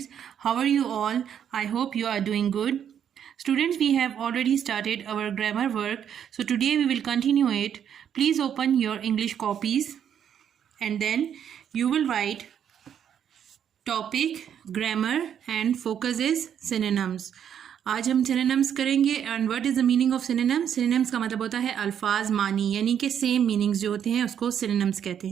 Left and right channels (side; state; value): left; quieter; 8.9 dB